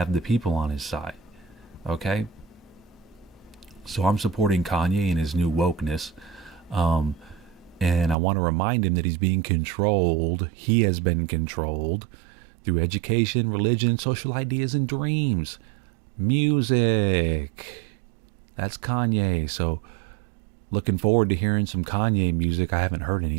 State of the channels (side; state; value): left; drops out; at 8.2 s